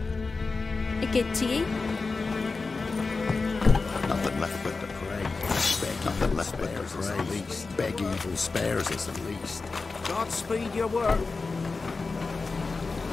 A good to you? Nothing left but to pray. Nothing left but to pray. At least. Beg evil spares us at least. Godspeed your work.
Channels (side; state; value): right; quieter; 4.1 dB